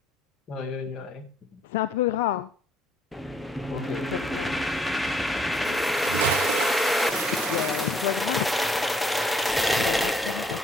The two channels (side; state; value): both; normal; correlation 0.65